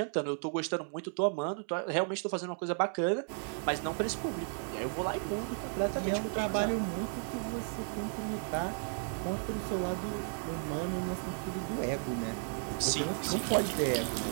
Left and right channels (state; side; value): silent; left; 55 dB below the other